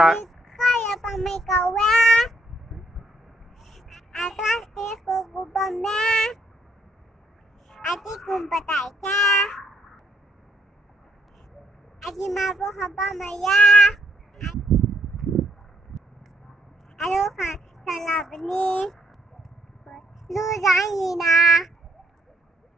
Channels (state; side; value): normal; both; correlation 0.71